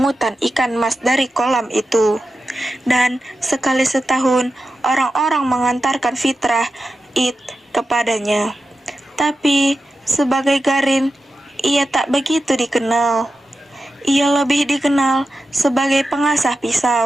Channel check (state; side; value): normal; both; correlation 0.91